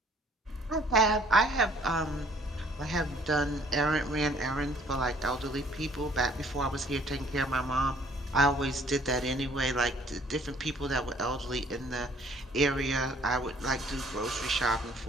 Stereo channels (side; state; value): both; normal; correlation 0.58